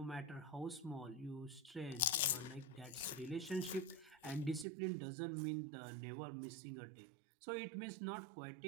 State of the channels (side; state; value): left; drops out; at 4.7 s